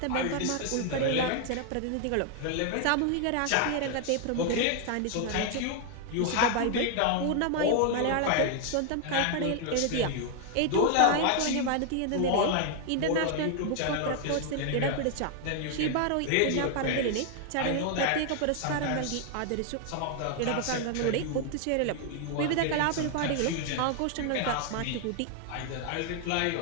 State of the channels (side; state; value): both; different; correlation 0.00